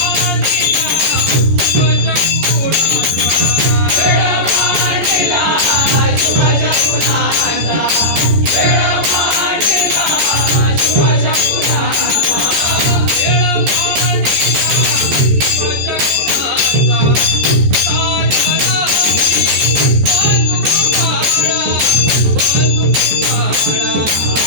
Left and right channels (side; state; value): left; late; 14 ms